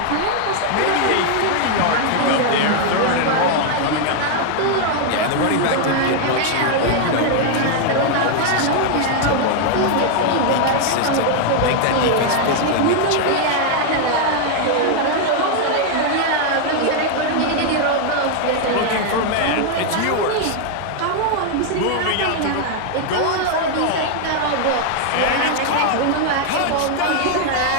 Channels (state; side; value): different; both; correlation 0.00